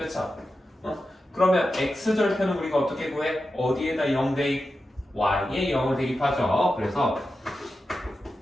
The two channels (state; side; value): normal; both; correlation 0.91